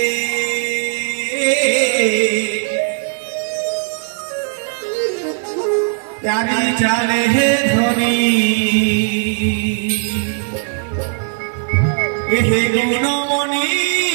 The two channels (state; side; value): silent; left; digital silence